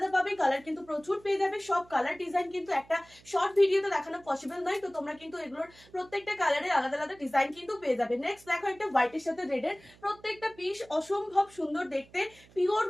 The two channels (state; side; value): noise; right; hum, 26 dB below the sound